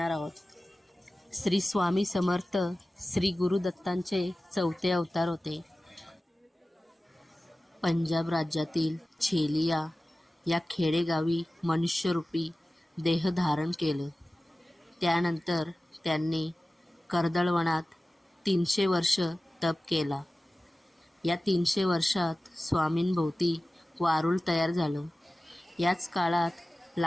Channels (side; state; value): both; normal; correlation 0.96